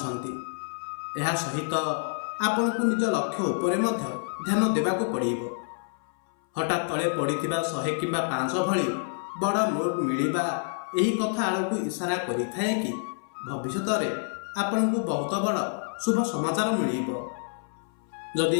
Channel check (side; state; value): right; silent; 60 dB below the other